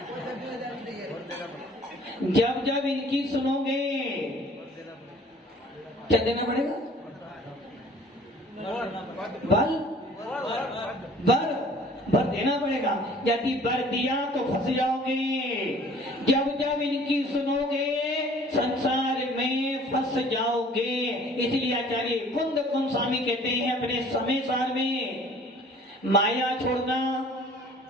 जब जब इनकी सुनोगे क्या देना पड़ेगा, बल बर देना पड़ेगा। यदि बर दिया तो फंस जाओगे। जब जब इनकी सुनोगे संसार में फंस जाओगे। इसलिए आचार्य कुंद स्वामी कहते हैं अपने समय सार में, माया छोड़ना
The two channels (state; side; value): normal; both; correlation 0.51